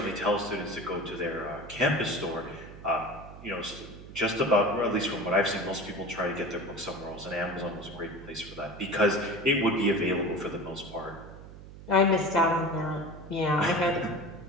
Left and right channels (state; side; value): noise; right; hum, 16 dB below the sound